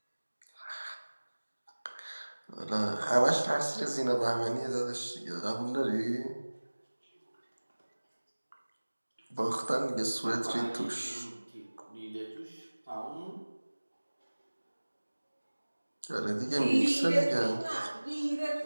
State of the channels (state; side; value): inverted; both; correlation -1.00